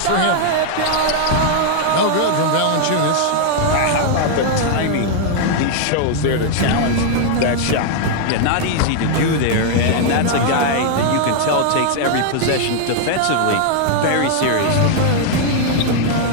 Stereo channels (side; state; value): both; different; correlation 0.00